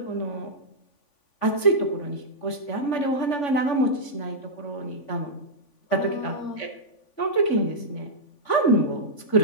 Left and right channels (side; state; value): right; late; 3.5 ms